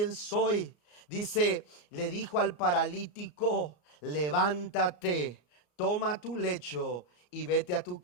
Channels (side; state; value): right; late; 34 ms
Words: soy. Dice, le dijo al paralítico: levántate, toma tu lecho y vete a tu